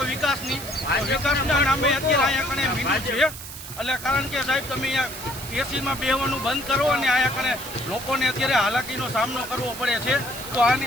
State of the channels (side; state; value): right; noise; hiss, 12 dB below the sound